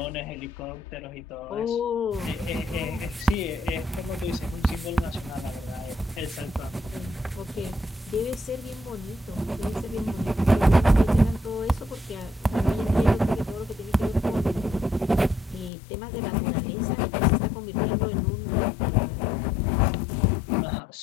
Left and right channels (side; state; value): right; drops out; at 15.7 s